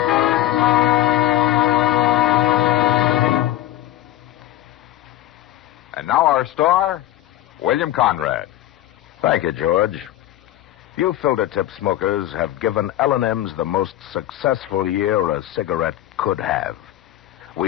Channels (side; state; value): right; quieter; 13.8 dB